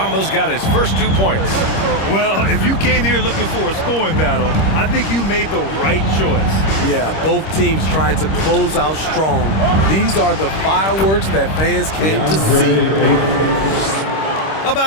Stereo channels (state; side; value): late; right; 26 ms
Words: got his first 2 points. Well, if you came here looking for a scoring battle, I think you made the right choice. Yeah, both teams trying to close out strong. These are the fireworks that fans came to see.